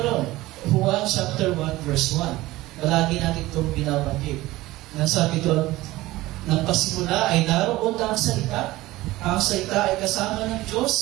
Juan chapter 1 verse 1. Palagi natin itong binabanggit. Nasabi doon, ng pasimula ay naroon na ang salita. Ang salita ay kasama ng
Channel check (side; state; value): left; quieter; 18.0 dB